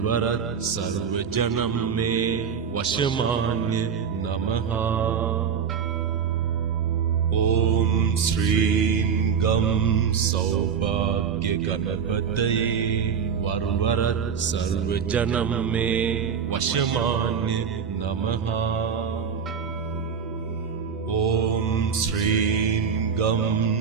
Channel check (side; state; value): left; quieter; 6.8 dB